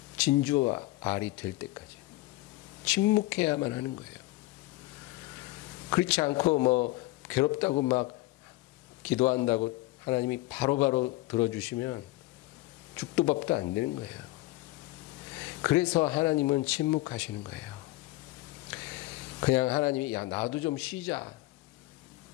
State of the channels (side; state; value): right; quieter; 19.3 dB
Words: 진주와 알이 될 때까지 침묵해야만 하는 거예요. 그렇지 않고 뭐 괴롭다고 막 기도한다고 하나님이 바로바로 들어주시면 죽도 밥도 안 되는 거예요. 그래서 하나님은 침묵하시는 거예요. 그냥 하나님이 야 나도 좀 쉬자.